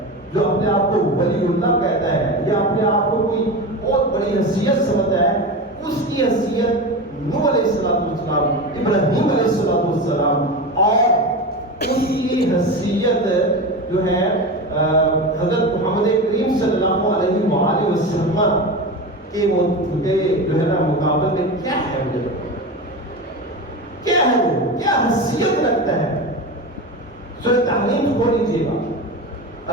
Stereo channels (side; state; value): both; normal; correlation 0.24